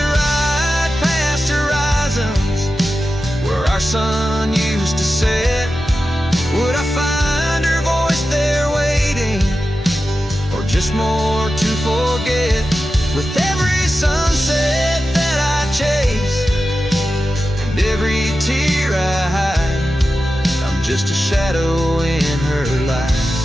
past horizons where our sun used to set, would I find her voice there waiting, or just more to forget? With every sunset that I chase and every tear I hide, I'm just a shadow in her life,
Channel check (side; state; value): both; normal; correlation 0.92